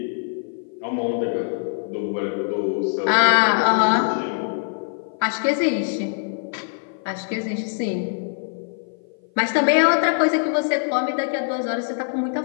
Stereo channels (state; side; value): silent; right; 56 dB below the other